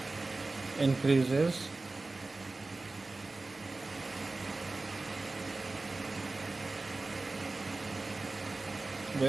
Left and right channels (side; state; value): left; quieter; 3.3 dB